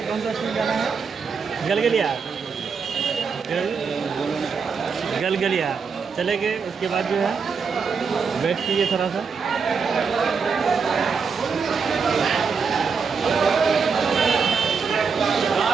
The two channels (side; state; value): left; quieter; 5.6 dB